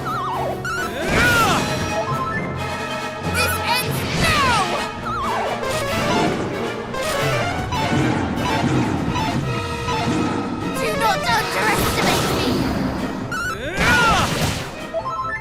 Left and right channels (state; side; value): identical; both; correlation 1.00